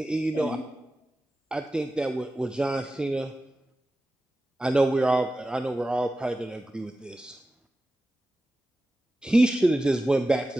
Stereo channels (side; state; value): both; normal; correlation 0.94